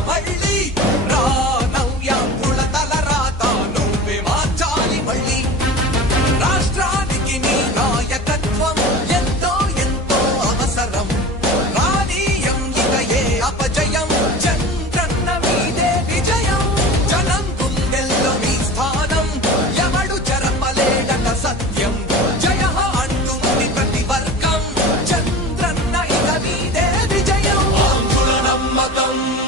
మళ్ళీ రా నవ్యాంధ్రుల తలరాత నువ్వే మార్చాలి మళ్ళీ రాష్ట్రానికి నీ నాయకత్వం ఎంతో ఎంతో అవసరం రానీయం ఇక ఏ అపజయం చంద్రన్న మీదే విజయం జనం గుండెల్లో మీ స్థానం ఎవడు చెరపలేడట సత్యం జయ అంటుంది ప్రతి వర్గం చంద్రన్న ఇక మీదే విజయం ఆంధ్రుల నమ్మకం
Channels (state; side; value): normal; both; correlation 0.34